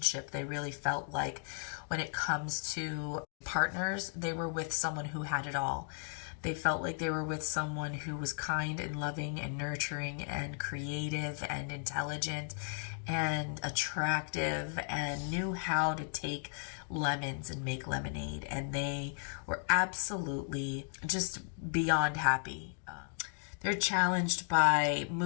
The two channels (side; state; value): right; silent; 54 dB below the other